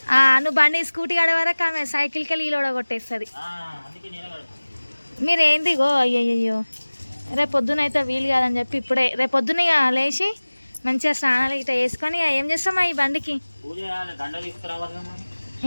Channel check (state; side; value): inverted; both; correlation -1.00